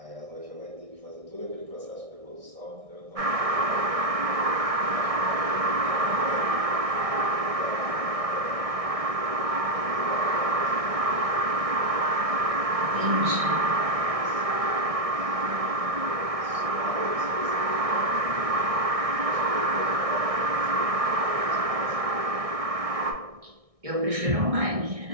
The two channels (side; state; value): left; late; 1.6 ms